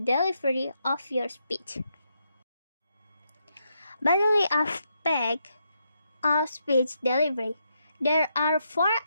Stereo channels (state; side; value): inverted; both; correlation -0.80